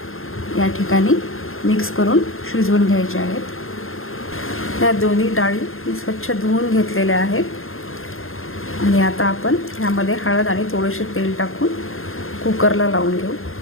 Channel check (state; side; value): late; right; 0.60 ms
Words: या ठिकाणी मिक्स करून शिजवून घ्यायच्या आहेत। या दोन्ही डाळी मी स्वच्छ धुवून घेतलेल्या आहेत आणि आता आपण ह्यामध्ये हळद आणि थोडेसे तेल टाकून कुकरला लावून घेऊ।